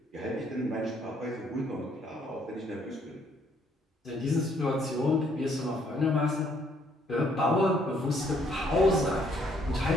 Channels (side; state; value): both; normal; correlation 0.67